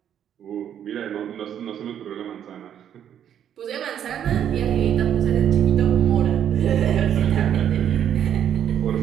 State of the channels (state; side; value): quieter; left; 9.6 dB